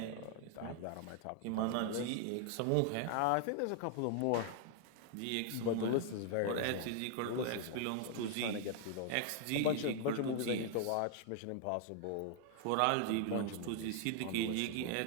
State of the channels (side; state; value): both; different; correlation 0.00